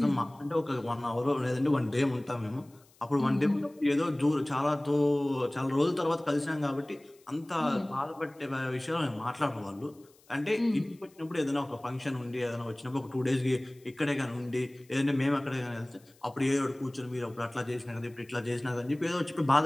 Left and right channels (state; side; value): noise; left; hiss, 30 dB below the sound